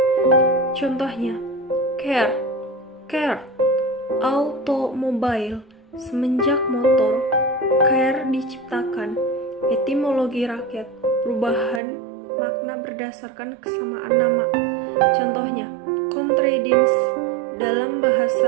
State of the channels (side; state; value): left; drops out; at 11.8 s